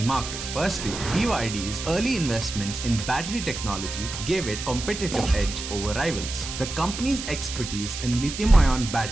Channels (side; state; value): right; noise; hiss, 8 dB below the sound